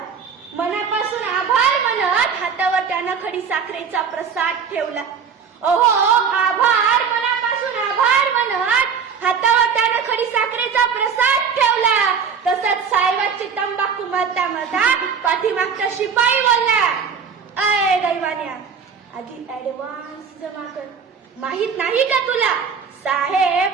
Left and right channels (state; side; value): quieter; left; 6.4 dB